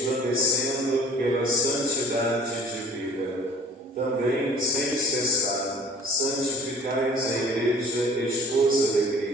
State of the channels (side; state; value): both; normal; correlation 0.49